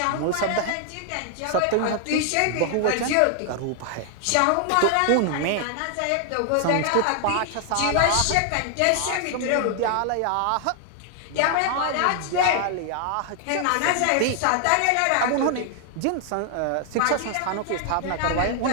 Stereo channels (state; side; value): different; both; correlation 0.00